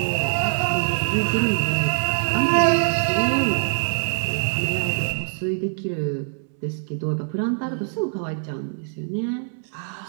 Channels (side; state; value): left; silent; 63 dB below the other